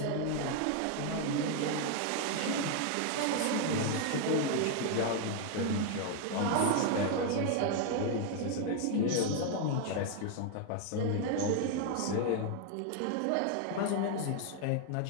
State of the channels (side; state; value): both; different; correlation 0.00